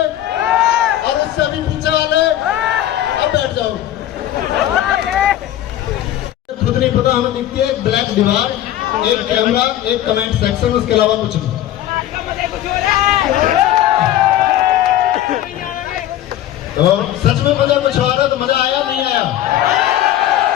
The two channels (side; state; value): right; quieter; 12.7 dB